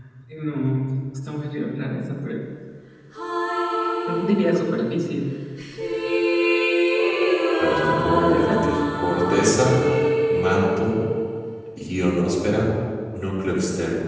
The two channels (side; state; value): both; identical; correlation 1.00